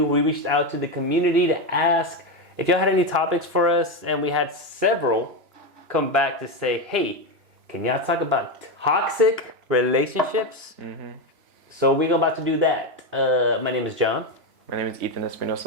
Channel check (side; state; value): left; late; 2.9 ms